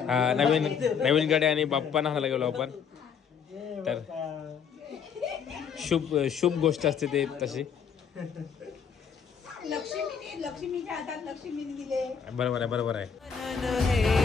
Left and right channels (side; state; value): right; quieter; 6.9 dB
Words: हा नवीन गाडी आणि बाप्पा नाहायला गेलो आपण. तर शुभ गोष्ट असते ते तशी. लक्ष्मीच्या हातात लक्ष्मीने दिले. बरोबर आहे बरोबर आहे.